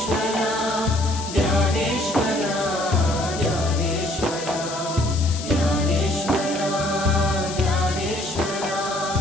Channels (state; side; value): noise; left; hiss, 10 dB below the sound